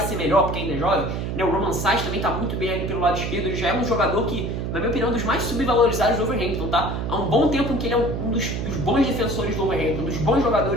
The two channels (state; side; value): noise; right; hum, 3 dB below the sound